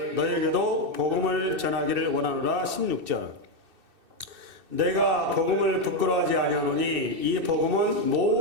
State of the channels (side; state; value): left; late; 2.6 ms